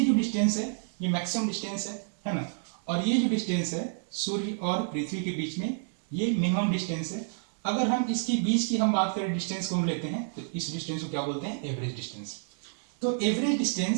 जो डिस्टेंस है ये मैक्सिमम डिस्टेंस है ना। और ये जो डिस्टेंस है सूर्य और पृथ्वी के बीच में, ये मिनिमम डिस्टेंस है। अगर हम इसके बीच की हम बात करें, डिस्टेंस को हम लेते हैं, तो इस डिस्टेंस को क्या बोलते हैं? Average distance. तो एवरेज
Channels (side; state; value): left; silent; digital silence